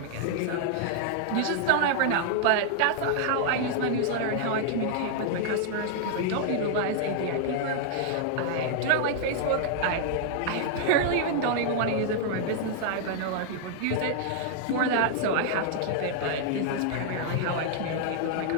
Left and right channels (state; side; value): different; both; correlation -0.01